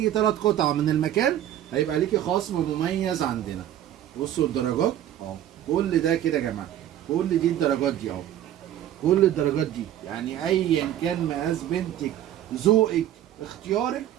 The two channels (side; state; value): left; quieter; 11.7 dB